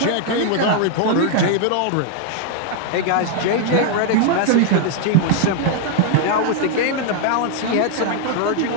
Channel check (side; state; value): both; different; correlation 0.00